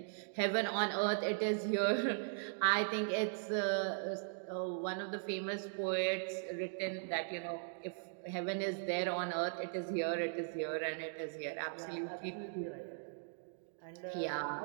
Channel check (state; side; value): silent; left; digital silence